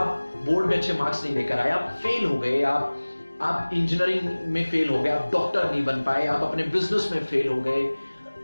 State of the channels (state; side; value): inverted; both; correlation -1.00